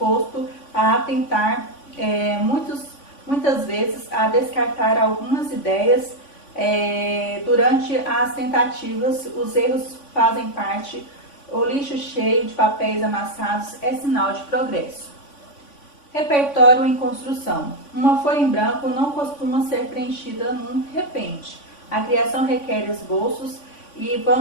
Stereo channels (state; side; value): late; right; 3.5 ms